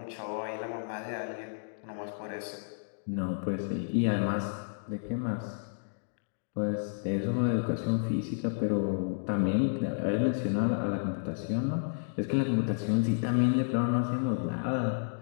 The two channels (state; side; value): silent; right; digital silence